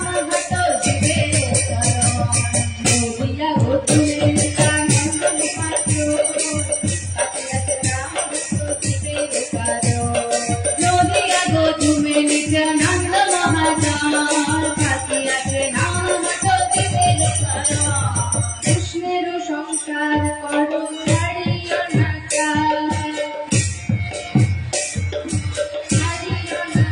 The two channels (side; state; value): both; identical; correlation 1.00